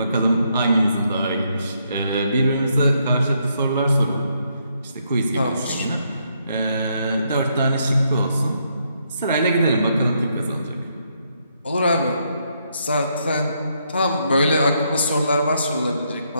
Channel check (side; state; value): both; inverted; correlation -0.75